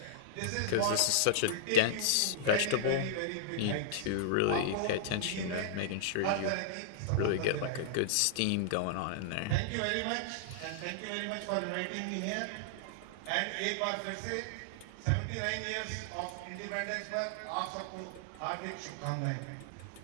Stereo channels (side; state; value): both; different; correlation -0.01